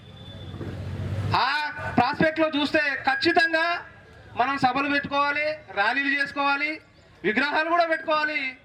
ఆ ప్రాస్పెక్ట్లో చూస్తే ఖచ్చితంగా మనం సభలు పెట్టుకోవాలి, ర్యాలీలు చేసుకోవాలి, విగ్రహాలు కూడా పెట్టుకోవాలి,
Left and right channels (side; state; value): both; identical; correlation 1.00